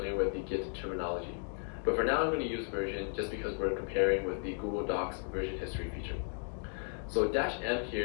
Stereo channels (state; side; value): silent; right; 55 dB below the other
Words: with the Git terminology. But for now, I'm going to use version just because we're comparing with the Google Docs version history feature. So -m